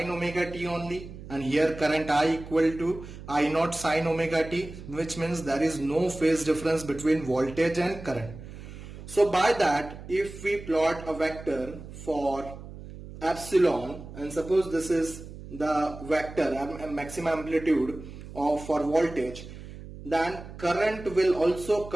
omega t only, and here current I equal to I naught sine omega t, which means there is no phase difference between voltage and current. So by that, if we plot a vector for epsilon, and suppose this is the vector maximum amplitude of for voltage, then current will also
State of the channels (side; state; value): right; noise; hum, 14 dB below the sound